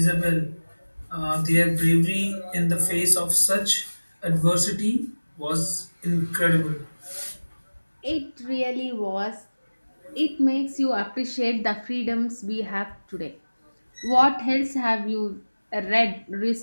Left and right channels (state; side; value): inverted; both; correlation -1.00